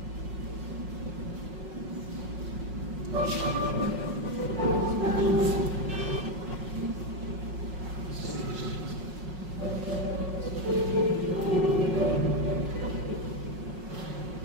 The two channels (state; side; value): late; left; 5.5 ms